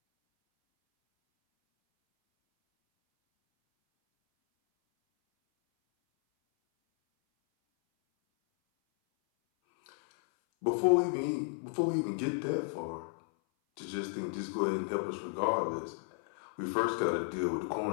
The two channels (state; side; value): silent; right; 56 dB below the other